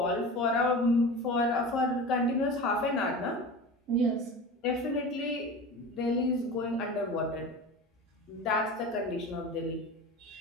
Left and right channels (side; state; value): both; normal; correlation 0.32